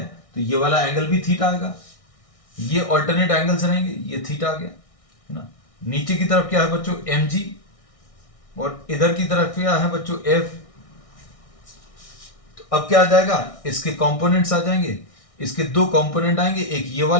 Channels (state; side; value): late; right; 1.6 ms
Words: तो ये वाला एंगल भी थीटा आएगा। ये ऑल्टरनेट एंगल्स रहेंगे, ये थीटा आ गया, है ना। नीचे की तरफ क्या है बच्चों, mg, और इधर की तरफ क्या है बच्चों, f। तो अब क्या आ जाएगा, इसके कंपोनेंट्स आ जाएंगे, इसके दो कंपोनेंट आएंगे, एक ये